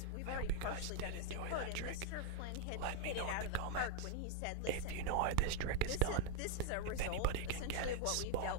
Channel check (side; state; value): both; different; correlation 0.02